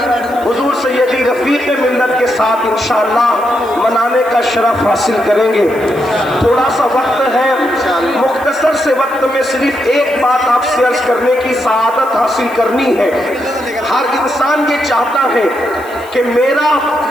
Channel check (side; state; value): left; noise; hiss, 23 dB below the sound